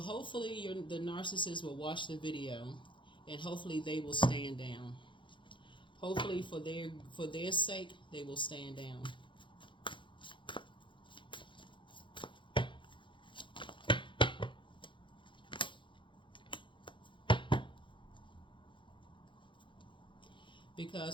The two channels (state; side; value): late; right; 0.24 ms